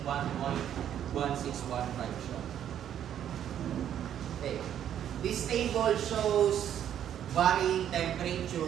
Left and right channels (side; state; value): left; quieter; 10.1 dB